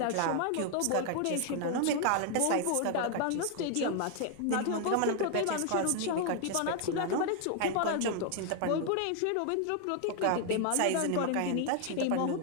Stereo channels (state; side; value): different; both; correlation 0.00